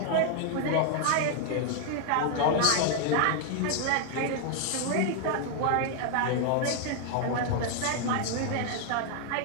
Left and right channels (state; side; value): different; both; correlation 0.00